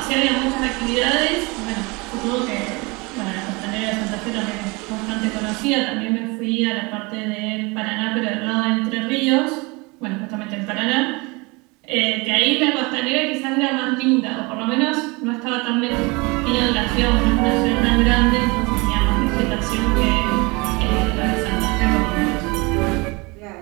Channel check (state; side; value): quieter; left; 26.4 dB